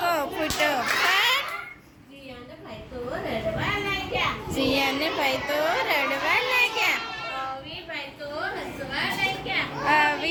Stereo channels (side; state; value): both; identical; correlation 1.00